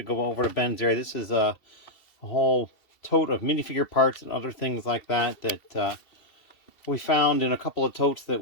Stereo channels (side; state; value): right; late; 2.7 ms